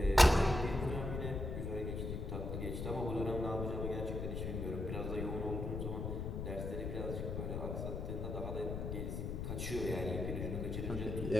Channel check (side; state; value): left; noise; rumble, 3 dB below the sound